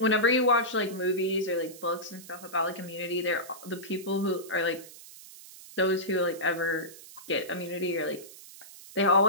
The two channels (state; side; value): noise; right; hiss, 18 dB below the sound